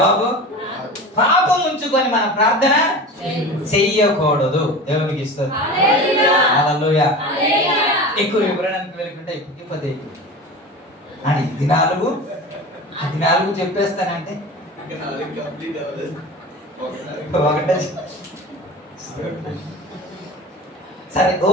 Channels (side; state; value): both; normal; correlation 0.33